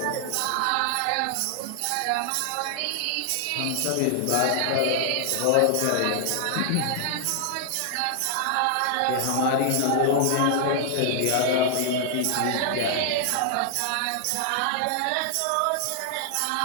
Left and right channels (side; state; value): both; different; correlation -0.01